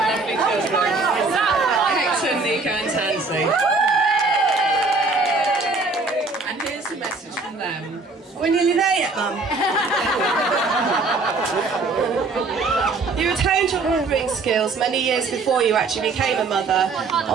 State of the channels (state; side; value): quieter; left; 3.8 dB